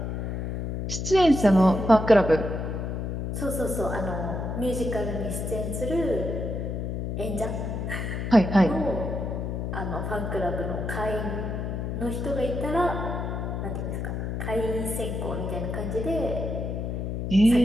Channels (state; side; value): noise; left; hum, 3 dB below the sound